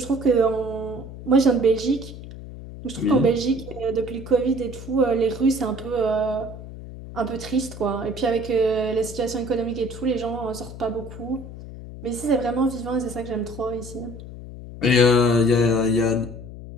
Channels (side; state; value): left; noise; hum, 13 dB below the sound